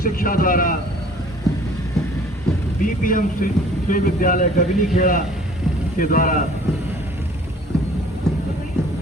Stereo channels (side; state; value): both; normal; correlation 0.52